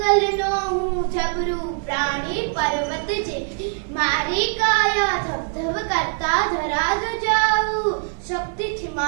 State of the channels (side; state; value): left; silent; 61 dB below the other